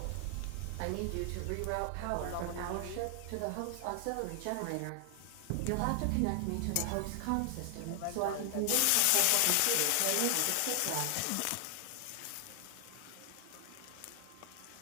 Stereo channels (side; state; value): both; different; correlation 0.00